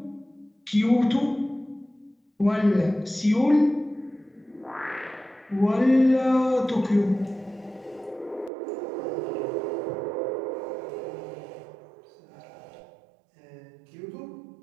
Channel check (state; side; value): drops out; left; at 8.5 s